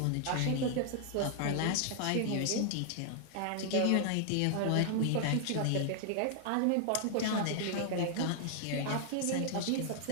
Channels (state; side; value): different; both; correlation 0.00